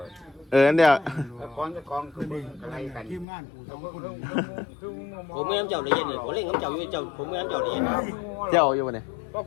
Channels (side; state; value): right; drops out; at 3.2 s